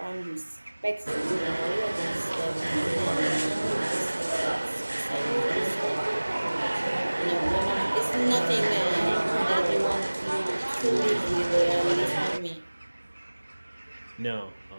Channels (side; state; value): both; inverted; correlation -1.00